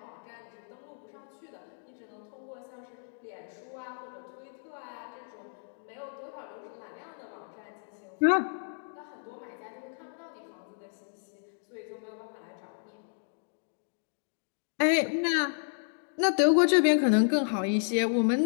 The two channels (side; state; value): right; silent; digital silence